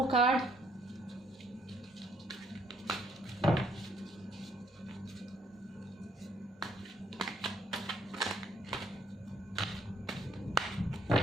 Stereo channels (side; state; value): both; normal; correlation 0.67